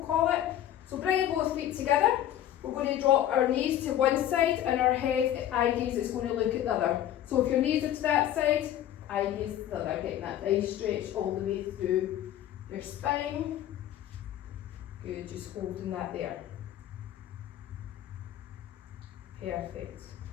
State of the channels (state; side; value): quieter; right; 11.7 dB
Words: call it. So bringing both feet together, we're going to drop our knees to one side and our head, eye gaze is going to look at the other. So if your knees are to that side, eye gaze to the other, getting that nice stretch all the way through your spine. Good, just holding that there. Perfect.